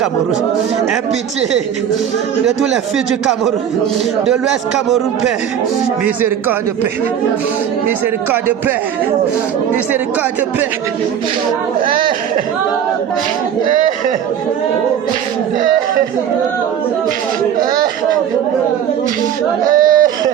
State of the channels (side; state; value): left; quieter; 9.1 dB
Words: Aie pitié de tous les filles du Cameroun, de l'Ouest Cameroun, Père. Miséricorde, Père. Miséricorde, Père. Miséricorde, Père.